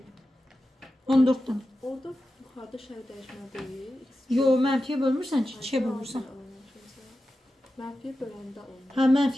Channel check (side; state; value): both; normal; correlation 0.92